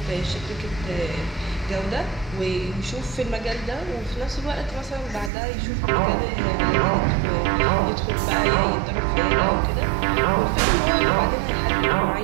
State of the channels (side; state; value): left; drops out; at 5.3 s